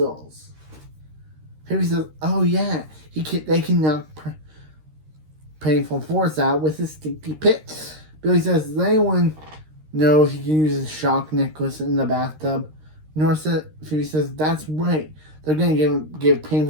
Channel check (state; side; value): late; left; 13 ms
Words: Phoebe says, oh yeah, they can knock Painful Force out with his stinky pit. Billy says, does anyone know if he can use his shock necklace in the bathtub? Phoebe says, that's right. They're going to give